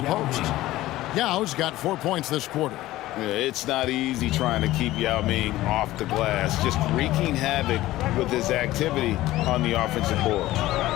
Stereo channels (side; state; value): right; quieter; 16.3 dB